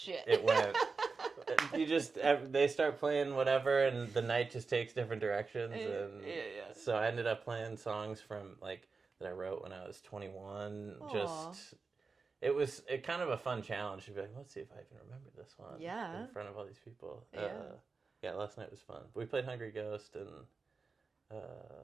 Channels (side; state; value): left; quieter; 4.5 dB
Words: It went. They start playing whatever, and the night just takes different directions, and so I ended up playing songs from like that I wrote when I was 21. Aww. Just it was kind of a fun challenge to be like, let's see if I can remember this one. In front of all these people. Last night was fun. We played Hungry Ghost and